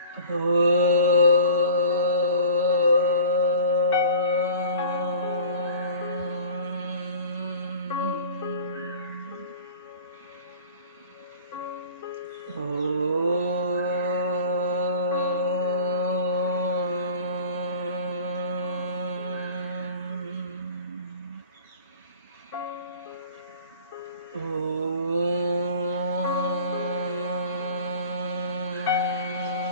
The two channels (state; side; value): inverted; both; correlation -0.43